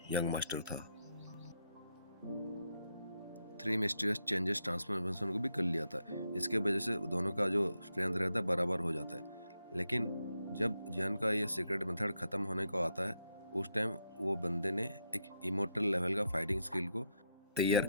यंग मास्टर था। 3 मिस्टीरियस चेंजेस ट्रांसफॉर्मेशन को भी कर लिया था। इसके वजह से दोनों का जो स्ट्रेंथ रहता है बराबर हो जाता है। लेकिन जब जियान का ये सीक्रेट मेथड खत्म होने को आता है उस टाइम वो बंदे ने एक इमोर्टल लेवल का फाइटिंग स्किल को तैयार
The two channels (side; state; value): both; inverted; correlation -0.81